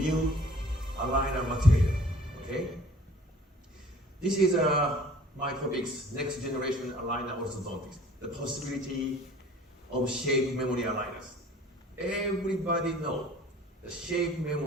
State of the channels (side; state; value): both; normal; correlation 0.51